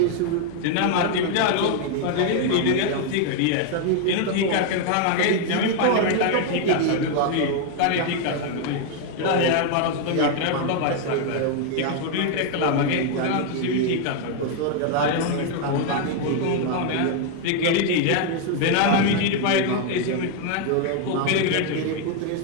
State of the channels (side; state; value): both; different; correlation 0.01